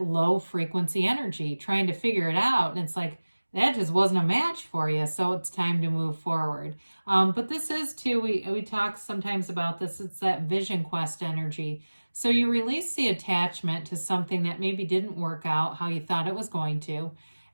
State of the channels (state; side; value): inverted; both; correlation -1.00